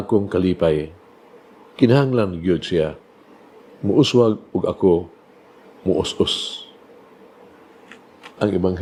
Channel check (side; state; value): both; identical; correlation 1.00